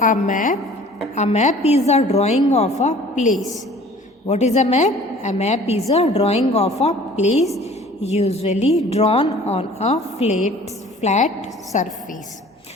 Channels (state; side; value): normal; both; correlation 0.49